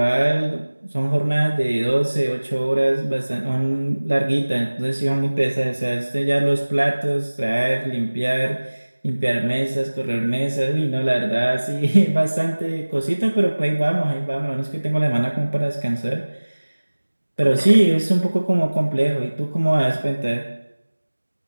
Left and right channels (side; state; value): both; inverted; correlation -1.00